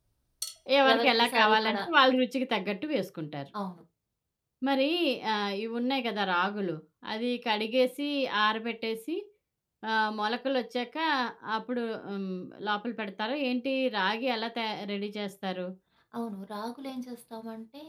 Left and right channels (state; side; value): identical; both; correlation 1.00